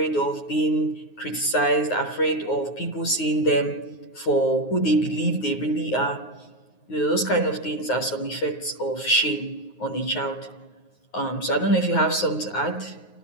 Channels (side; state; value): right; late; 9.5 ms